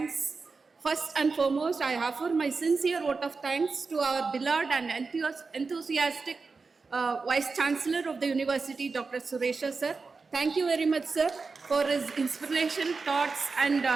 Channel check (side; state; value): left; quieter; 4.4 dB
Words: First and foremost, I offer my sincere vote of thanks to our beloved and enthusiastic Vice-chancellor of the University, Dr. Suresha sir. Thank you very much, sir, for his inspiration, thoughts, and